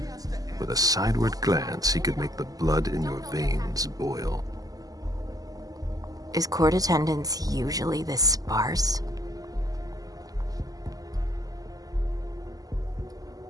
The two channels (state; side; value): late; left; 0.17 ms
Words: With a sideward glance, he could make the blood in your veins boil. Is court attendance usually this sparse?